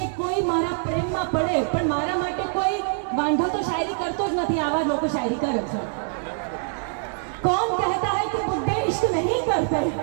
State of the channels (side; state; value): left; silent; 62 dB below the other